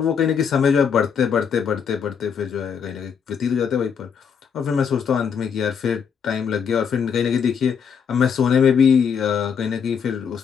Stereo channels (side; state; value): right; quieter; 6.9 dB